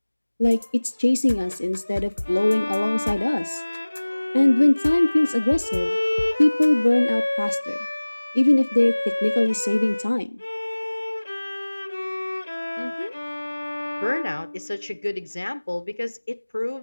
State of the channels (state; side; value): inverted; both; correlation -1.00